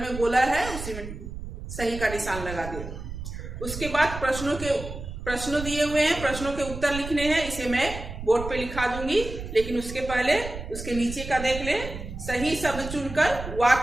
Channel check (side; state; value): right; noise; rumble, 9 dB below the sound